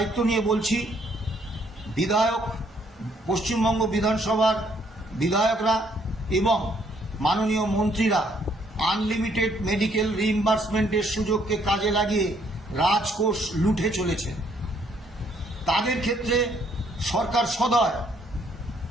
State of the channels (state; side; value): normal; both; correlation 0.68